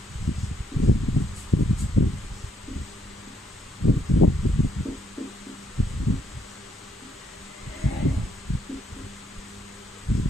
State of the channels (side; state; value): both; normal; correlation 0.73